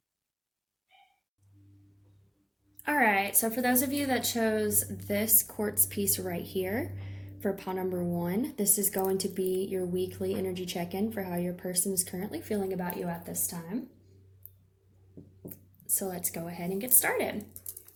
All right, so for those of you that chose this quartz piece right here, for pile number 1, this is going to be your weekly energy check-in for how your person is currently feeling about you at this time. So let's go ahead and get started.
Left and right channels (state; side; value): identical; both; correlation 1.00